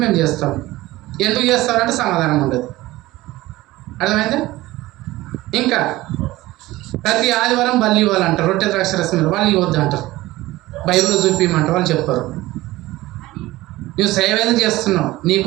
మేము చేస్తాం. ఎందుకు చేస్తారంటే సమాధానం ఉండదు. అర్థమైందా? ఇంకా ప్రతి ఆదివారం బల్లి ఇవ్వాలంటారు, రొట్టె ద్రాక్ష రసం వాళ్ళు ఇవ్వద్దు అంటారు. బైబిల్లో చూపించమంటారు, వాళ్ళు చెప్పరు. నువ్వు సేవ ఏదో చేస్తున్నావు, నీ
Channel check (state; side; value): quieter; left; 18.0 dB